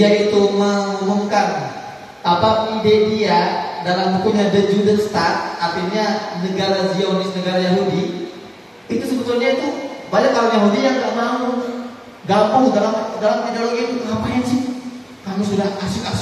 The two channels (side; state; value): both; identical; correlation 1.00